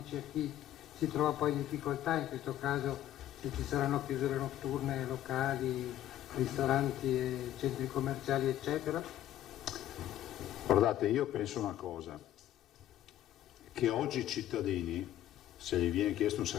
a chi si trova poi in difficoltà, in questo caso se ci saranno chiusure notturne, locali, ristoranti, centri commerciali eccetera? Guardate, io penso una cosa, che oggi i cittadini, se gli viene chiesto un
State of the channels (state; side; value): quieter; right; 12.3 dB